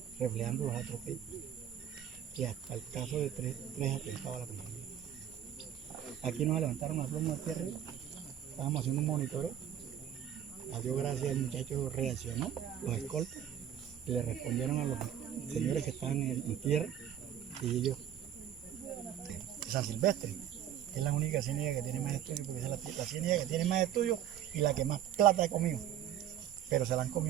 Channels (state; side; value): quieter; left; 10.3 dB